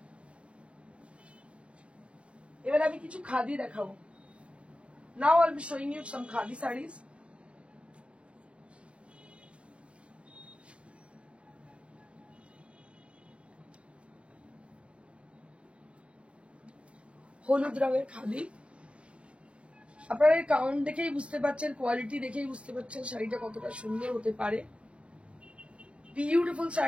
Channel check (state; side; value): late; left; 0.060 ms